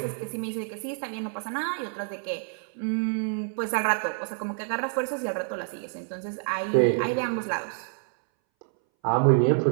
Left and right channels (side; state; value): left; silent; 60 dB below the other